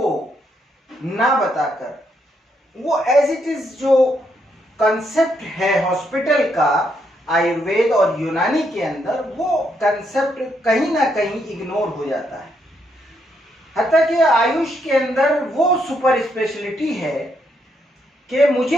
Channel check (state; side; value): normal; both; correlation 0.76